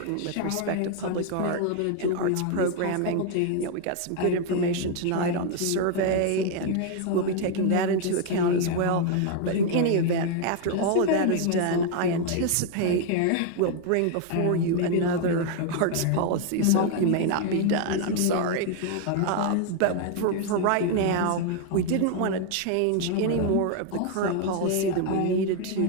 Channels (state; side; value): different; both; correlation 0.00